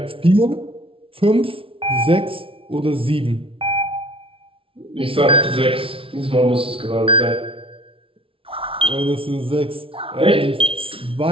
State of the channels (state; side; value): late; left; 0.26 ms